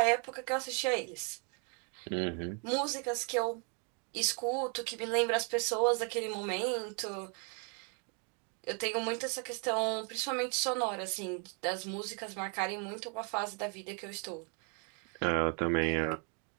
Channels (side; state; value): left; quieter; 37.6 dB